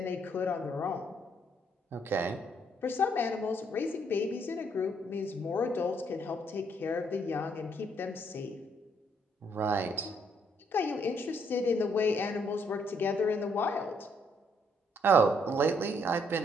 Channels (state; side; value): normal; both; correlation 0.70